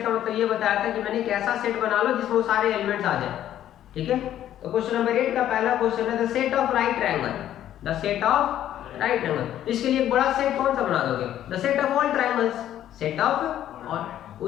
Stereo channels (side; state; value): right; quieter; 11.6 dB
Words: का मतलब ये बताया था कि मैंने एक ऐसा सेट बना लो जिसमें वो सारे एलिमेंट्स आ जाए। ठीक है, तो क्वेश्चन नंबर 8 का पहला क्वेश्चन है the set of right triangle, the set of right triangle. इसके लिए एक बड़ा सेट कौन सा बना दोगे, the set of all triangles, set of, और